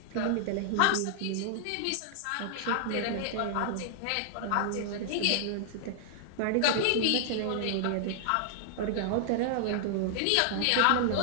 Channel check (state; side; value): different; both; correlation -0.01